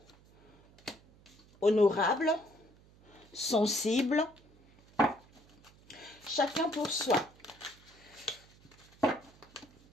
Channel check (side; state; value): right; noise; hum, 27 dB below the sound